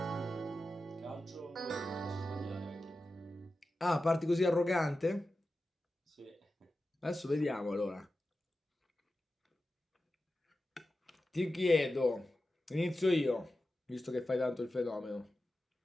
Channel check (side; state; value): both; normal; correlation 0.93